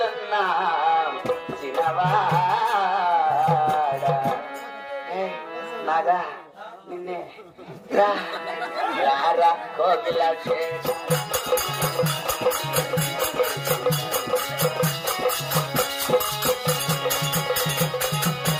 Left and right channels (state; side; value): identical; both; correlation 1.00